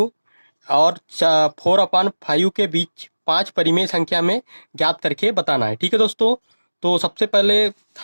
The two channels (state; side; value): inverted; both; correlation -1.00